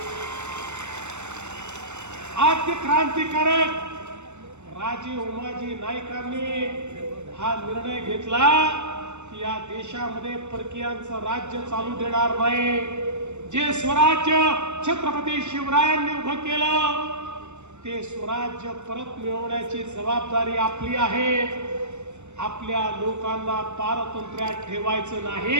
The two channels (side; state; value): left; late; 0.83 ms